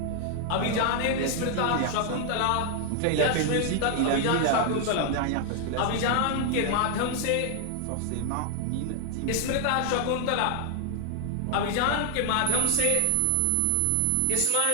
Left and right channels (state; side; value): different; both; correlation 0.00